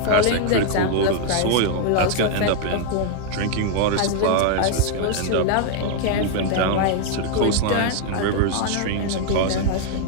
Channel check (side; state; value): both; different; correlation 0.00